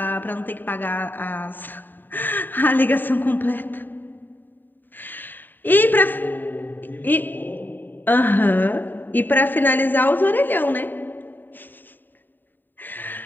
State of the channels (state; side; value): late; right; 0.091 ms